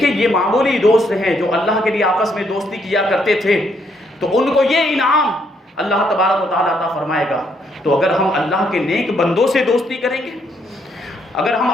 یہ معمولی دوست ہیں جو اللہ کے لیے آپس میں دوستی کیا کرتے تھے، تو ان کو یہ انعام اللہ تبارک و تعالیٰ عطا فرمائے گا۔ تو اگر ہم اللہ کے نیک بندوں سے دوستی کریں گے، اگر ہم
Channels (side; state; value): both; normal; correlation 0.73